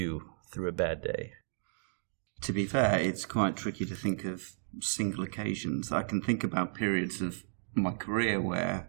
through a bad day. To be fair, it's quite tricky to think of single occasions. I can think about periods of my career where,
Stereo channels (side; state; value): left; silent; digital silence